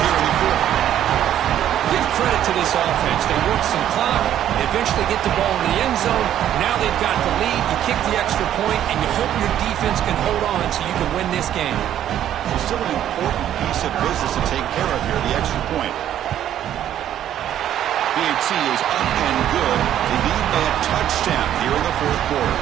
here in the fourth. Give credit to this offense. They work some clock. They eventually get the ball in the end zone. Now they've got the lead. You kick the extra point, and you hope your defense can hold on so you can win this game. It's still an important piece of business to take care of here, the extra point. BAT is up and good. They need a touchdown here in the fourth quarter.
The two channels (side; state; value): left; quieter; 11.1 dB